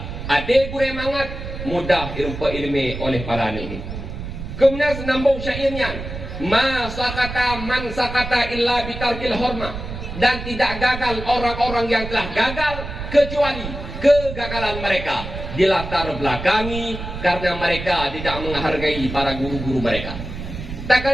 hati gure mangat mudah ilmu oleh para ini. Kemudian senambung syairnya, ma sakata man sakata illa bitarkil hormah, dan tidak gagal orang-orang yang telah gagal kecuali kegagalan mereka dilatar belakangi karena mereka tidak menghargai para guru-guru mereka. Tak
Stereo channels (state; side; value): noise; right; rumble, 8 dB below the sound